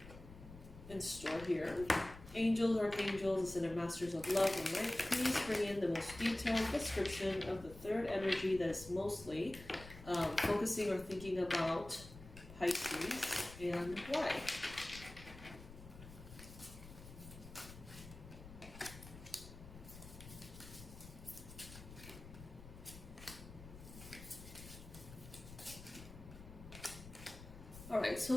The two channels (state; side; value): noise; left; rumble, 15 dB below the sound